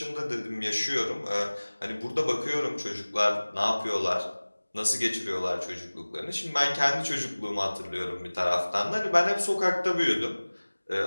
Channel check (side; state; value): both; inverted; correlation -1.00